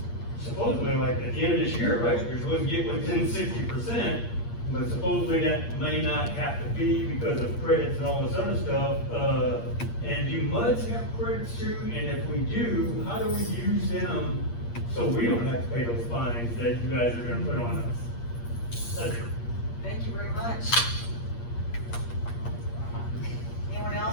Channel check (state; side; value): late; right; 8.5 ms